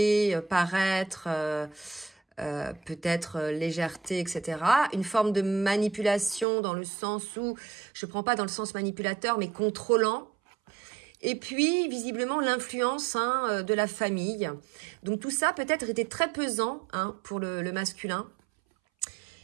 paraître, peut-être légèreté, etc. Une forme de manipulation dans le sens où, je ne prends pas dans le sens manipulateur, mais contrôlant. Et puis, visiblement, l'influence de la famille. Donc, tout ça, peut-être, était très pesant pour le masculin.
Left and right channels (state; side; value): drops out; left; at 6.5 s